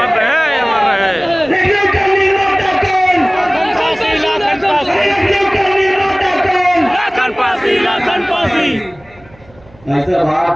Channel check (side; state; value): right; noise; hum, 27 dB below the sound